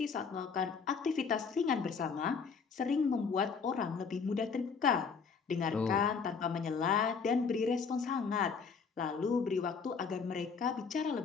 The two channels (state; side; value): quieter; right; 5.6 dB